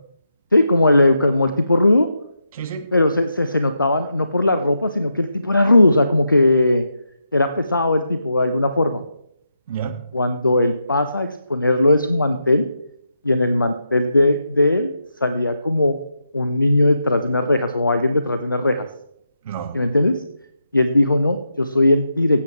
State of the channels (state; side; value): inverted; both; correlation -0.84